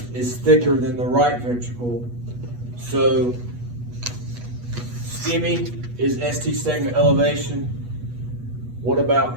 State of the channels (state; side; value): late; left; 8.3 ms